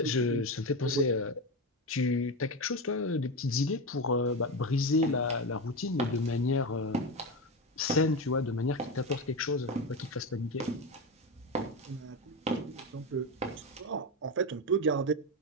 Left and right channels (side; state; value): both; normal; correlation 0.16